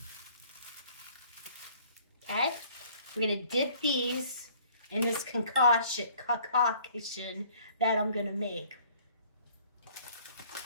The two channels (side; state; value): both; inverted; correlation -0.56